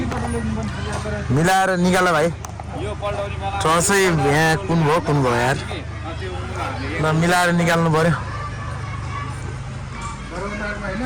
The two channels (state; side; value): identical; both; correlation 1.00